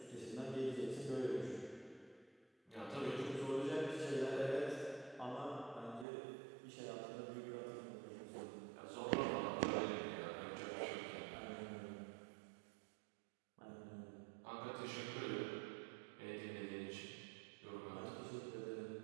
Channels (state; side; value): drops out; left; at 6.1 s